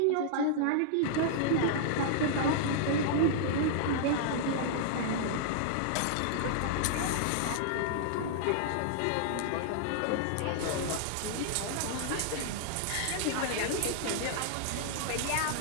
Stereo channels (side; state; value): both; different; correlation -0.01